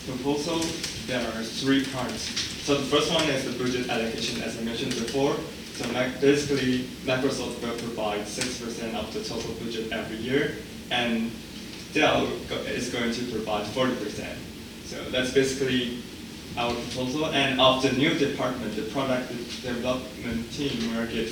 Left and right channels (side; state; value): both; identical; correlation 1.00